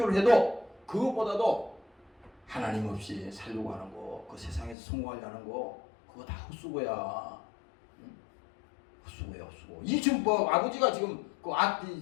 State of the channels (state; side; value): drops out; right; at 4.8 s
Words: 해도 그것보다도 하나님 없이 살려고 하는 거, 그 세상에서 성공하려는 거, 그거 다 헛수고야. 헛수고야, 헛수고. 이 지금 아버지가 지금